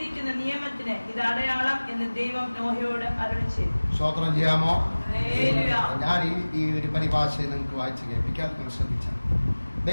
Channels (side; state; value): both; inverted; correlation -1.00